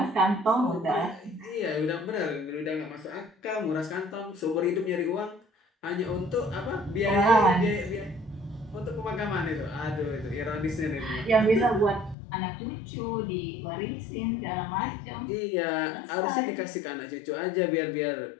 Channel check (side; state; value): right; drops out; at 12.2 s